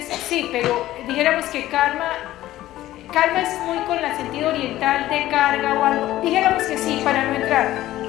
sí, pero dijéramos que karma es muy con el sentido oriental de carga o algo. Dijéramos que sí, para no entrar.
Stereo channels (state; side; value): quieter; right; 14.8 dB